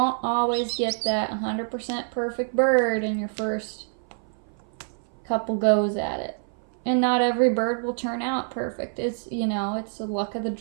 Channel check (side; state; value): left; silent; 57 dB below the other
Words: always get that 100% perfect bird in your first couple goes at it. And not every bird will turn out perfect. It's, you know, it's the luck of the